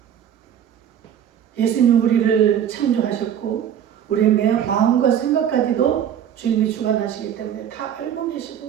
예수님 우리를 창조하셨고 우리의 매 마음과 생각까지도 주님이 주관하시기 때문에 다 알고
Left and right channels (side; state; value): left; quieter; 9.4 dB